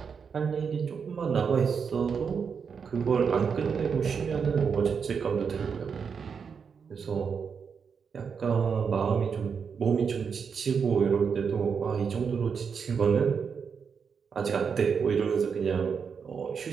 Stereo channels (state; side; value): quieter; left; 6.3 dB